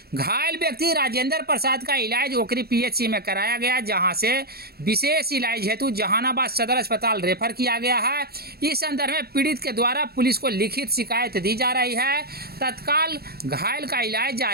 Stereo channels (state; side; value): late; left; 0.46 ms